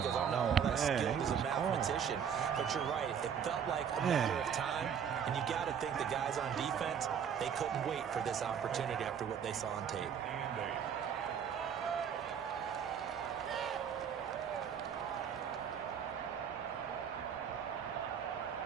him. I'm not all that Man, skilled he as a was mathematician. But you're right. It felt like a matter of time, and you got to think the guys on defense, they couldn't wait for this opportunity after what they saw on tape.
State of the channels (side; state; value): left; quieter; 7.8 dB